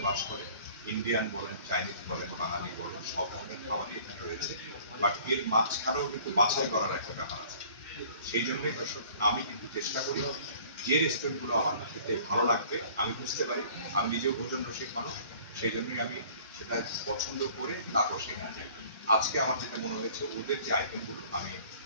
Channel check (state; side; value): inverted; both; correlation -0.51